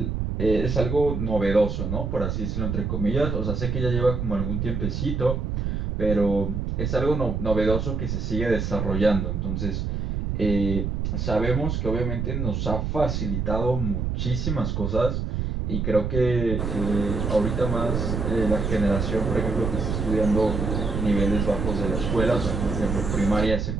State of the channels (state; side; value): noise; right; rumble, 2 dB below the sound